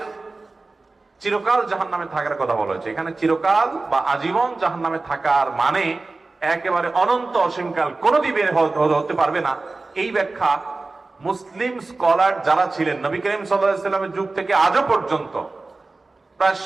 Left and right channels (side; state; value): left; quieter; 3.5 dB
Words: চিরকাল জাহান্নামে থাকার কথা বলা হয়েছে। এখানে চিরকাল বা আজীবন জাহান্নামে থাকার মানে একেবারে অনন্ত অসীমকাল কোনোদিন বের হতে পারবে না। এই ব্যাখ্যা মুসলিম স্কলার যারা ছিলেন নবী করিম সাল্লাল্লাহু আলাইহি সাল্লামের যুগ থেকে আজও পর্যন্ত, প্রায়